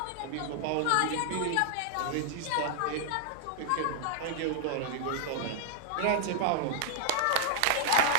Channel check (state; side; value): different; both; correlation -0.01